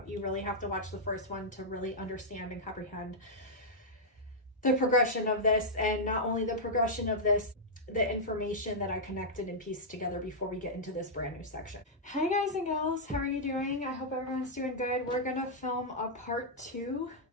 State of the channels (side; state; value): both; normal; correlation -0.08